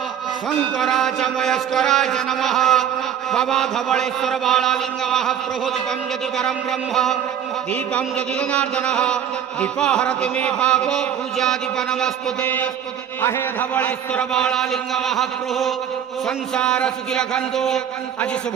शंकराच मयस्कराच नमः भवाधवळेश्वर बालालिंग महाप्रभु दीपं यदि परं ब्रह्म दीपं यदि जनार्दनः दीपहरति मे पापो पूजादीप नमस्तुते अहे धवळेश्वर बालालिंग महाप्रभु संसार सुखी रखंतु आज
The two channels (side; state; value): left; quieter; 9.2 dB